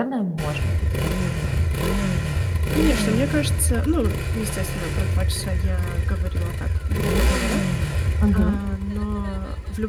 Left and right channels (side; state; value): both; identical; correlation 1.00